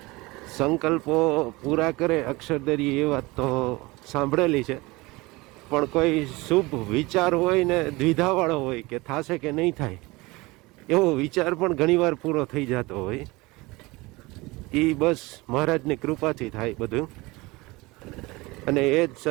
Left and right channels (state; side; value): quieter; left; 22.7 dB